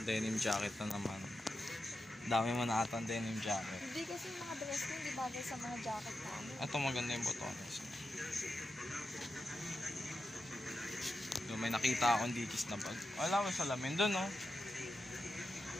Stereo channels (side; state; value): both; normal; correlation 0.89